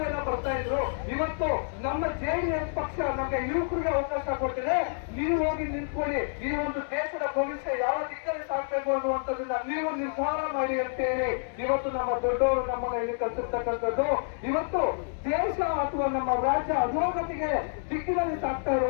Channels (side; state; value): right; silent; digital silence